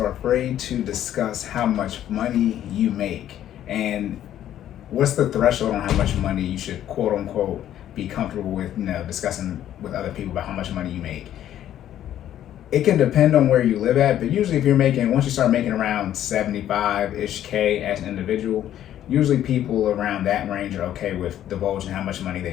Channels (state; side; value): quieter; right; 11.5 dB